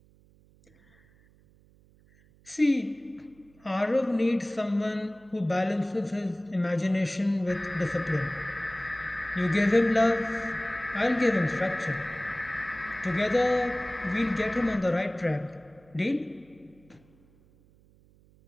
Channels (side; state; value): right; noise; hum, 30 dB below the sound